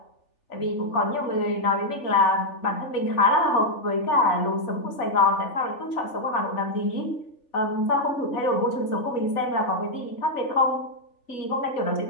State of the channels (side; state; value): right; late; 3.4 ms